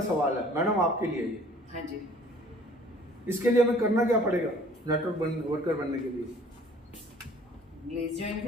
सवाल है मैडम आपके लिए ये। हाँ जी। इसके लिए हमें करना क्या पड़ेगा नेटवर्क वर्कर बनने के लिए? ग्लेज ज्वाइन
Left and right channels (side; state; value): both; normal; correlation 0.53